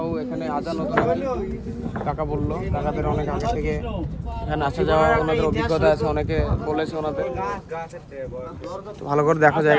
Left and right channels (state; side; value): identical; both; correlation 1.00